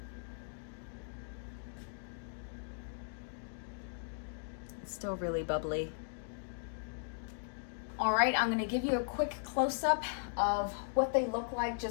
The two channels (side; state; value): right; silent; digital silence